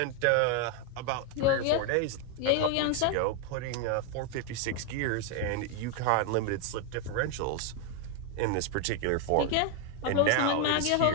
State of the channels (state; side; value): different; both; correlation 0.01